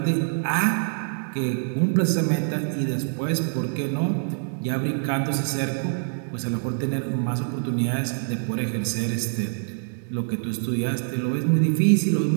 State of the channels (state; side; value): silent; left; digital silence